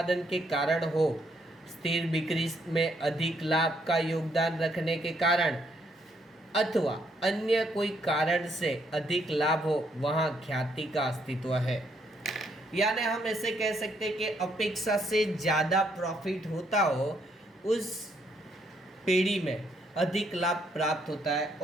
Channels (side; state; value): both; normal; correlation 0.72